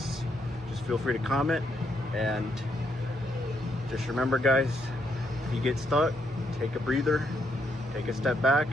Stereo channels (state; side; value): normal; both; correlation 0.76